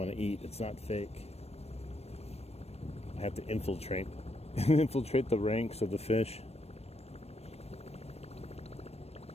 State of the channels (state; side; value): late; right; 0.30 ms